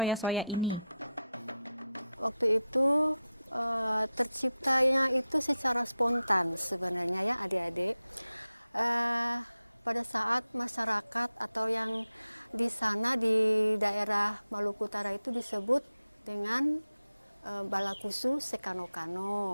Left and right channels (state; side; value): inverted; both; correlation -0.90